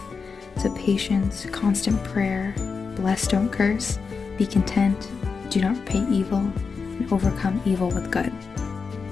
So patience, constant prayer, bless, don't curse, be content, do not repay evil, and overcome evil with good.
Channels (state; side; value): quieter; right; 5.1 dB